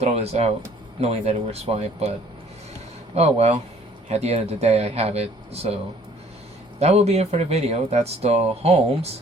this out knowing that it works fine. But oh well, at the end of the day I have it. So that will be it for the video. That's the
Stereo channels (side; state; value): both; normal; correlation 0.57